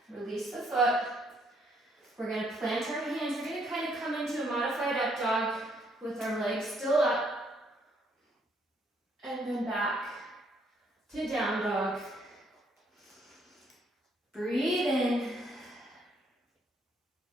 Release the foot. We're going to plant our hands. We're going to kind of come into a modified up dog with our legs still up. And then back to down dog. Breathe in.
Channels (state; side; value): normal; both; correlation 0.69